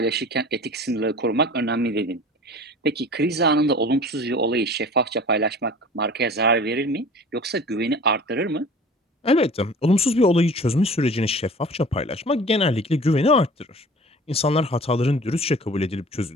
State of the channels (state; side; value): normal; both; correlation 0.42